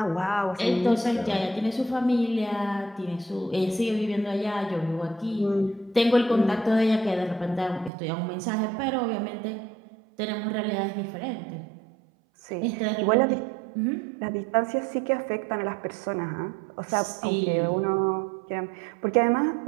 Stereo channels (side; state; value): left; drops out; at 7.9 s